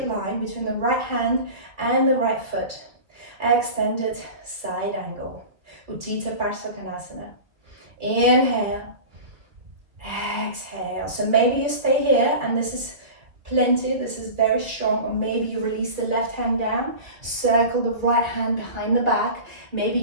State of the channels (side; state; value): left; late; 2.0 ms